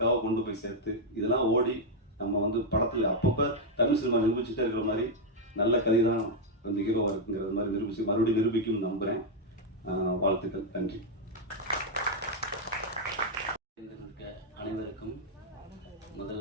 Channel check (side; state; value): both; normal; correlation -0.01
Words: கொண்டு போய் சேர்த்து இதெல்லாம் ஓடி நம்ம வந்து படத்தில் அப்பப்போ தமிழ் சினிமா நிரூபிச்சுட்டே இருக்கிற மாதிரி நல்ல கதை தான் வந்து ஹீரோவாக இருக்குங்கிற மாதிரி மறுபடியும் நிரூபிக்கும்னு நம்புகிறேன். வாழ்த்துக்கள், நன்றி. அனைவருக்கும்